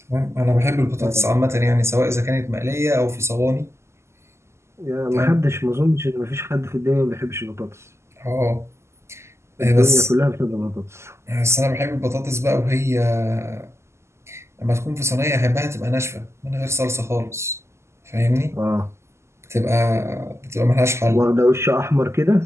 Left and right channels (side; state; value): left; late; 0.13 ms